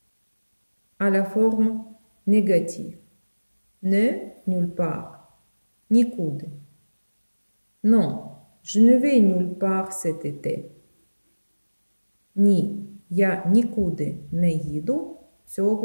À la forme négative. Ne, nulle part. Нікуди. Non, je ne vais nulle part cet été. Ні, я нікуди не їду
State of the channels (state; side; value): inverted; both; correlation -1.00